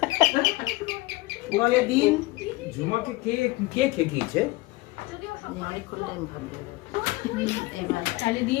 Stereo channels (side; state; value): right; quieter; 21.1 dB